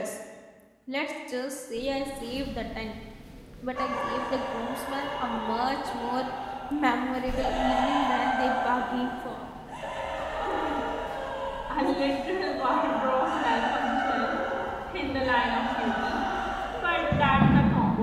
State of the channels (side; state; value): both; identical; correlation 1.00